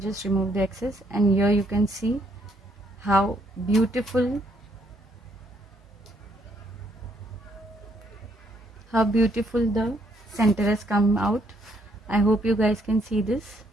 just remove the excess, and here you can see how beautiful the center has come out. I hope you guys can see this.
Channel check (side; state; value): both; normal; correlation 0.70